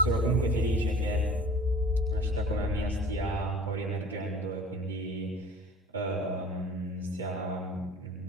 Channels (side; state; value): both; normal; correlation 0.44